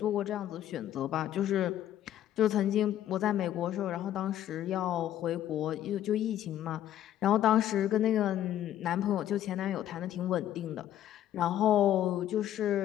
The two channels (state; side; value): quieter; right; 11.8 dB